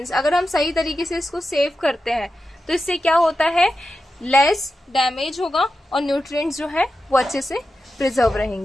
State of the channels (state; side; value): normal; both; correlation 0.91